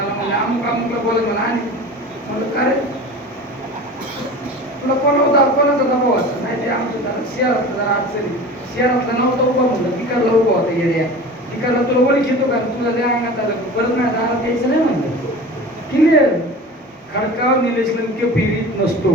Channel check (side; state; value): both; normal; correlation 0.36